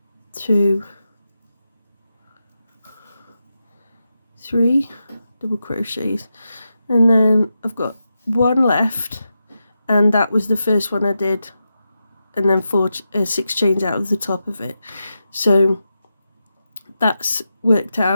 2, 3 double crochets, and then I've got 1 left, and that was the first one I did, and then 6 chains out of the top of it. So that's worked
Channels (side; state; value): both; inverted; correlation -0.89